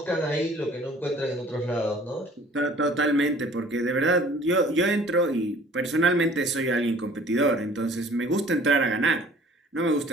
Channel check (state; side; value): normal; both; correlation 0.52